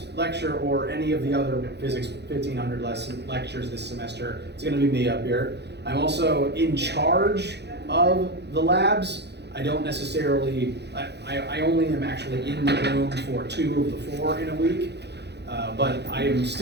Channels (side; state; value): left; late; 0.49 ms